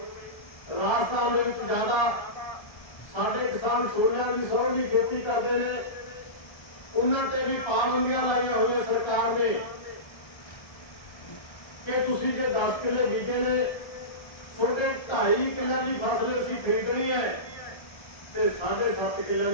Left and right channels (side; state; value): right; late; 1.7 ms